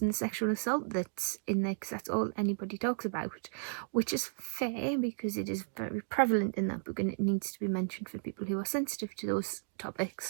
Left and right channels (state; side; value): silent; left; digital silence